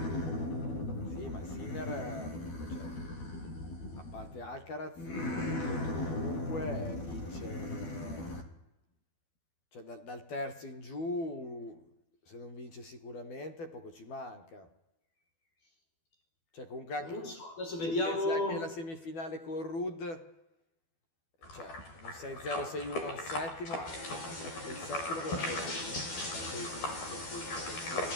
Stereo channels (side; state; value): right; late; 12 ms